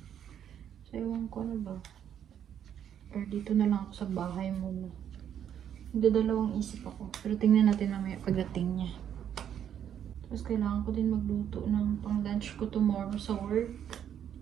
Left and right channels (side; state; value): left; quieter; 9.4 dB